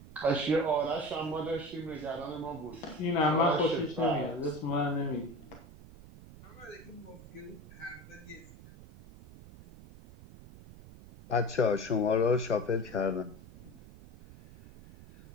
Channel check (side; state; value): right; noise; rumble, 18 dB below the sound